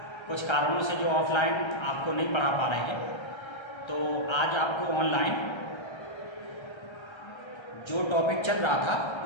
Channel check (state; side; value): late; right; 1.3 ms